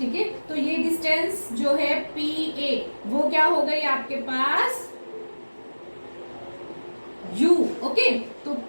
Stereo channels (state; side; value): inverted; both; correlation -1.00